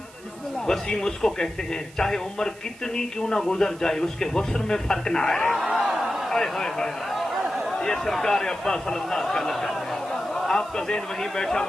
وسیم اس کو کہتے ہیں چاہے عمر کتنی کیوں نہ گزر جائے اس کے حسن میں فرق نہ آئے۔ یہ سرکار عباس صلی اللہ علیہ وسلم ہے۔ آپ کا ذہن وہیں بیٹھا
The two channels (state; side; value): noise; right; hiss, 22 dB below the sound